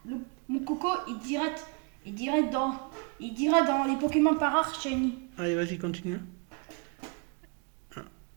il dirait dans les Pokémon par rare shiny. Allez, vas-y, continue. Ah,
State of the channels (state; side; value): quieter; left; 32.2 dB